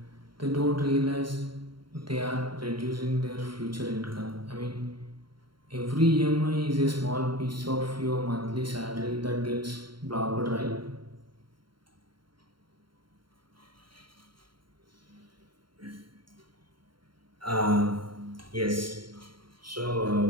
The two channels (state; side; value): late; left; 0.73 ms